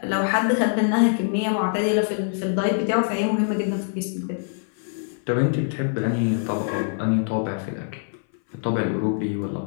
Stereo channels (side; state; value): right; silent; 59 dB below the other